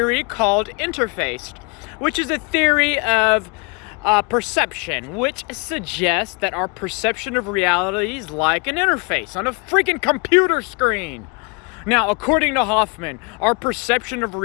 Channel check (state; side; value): quieter; right; 31.3 dB